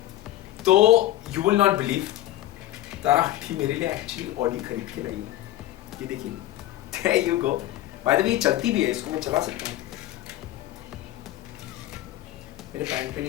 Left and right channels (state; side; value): quieter; right; 14.8 dB